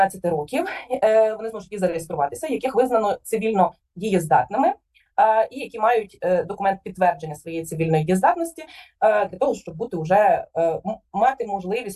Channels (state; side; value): identical; both; correlation 1.00